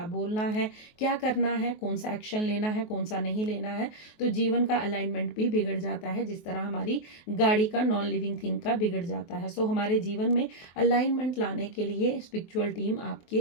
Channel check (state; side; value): late; right; 23 ms